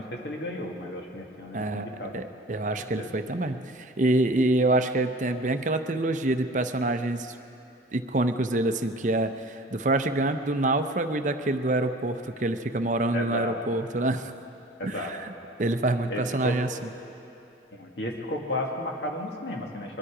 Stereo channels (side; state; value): both; normal; correlation 0.43